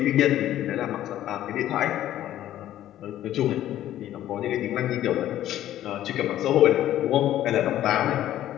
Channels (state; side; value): quieter; right; 12.7 dB